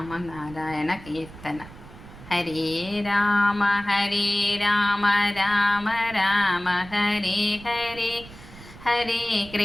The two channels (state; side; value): noise; right; rumble, 18 dB below the sound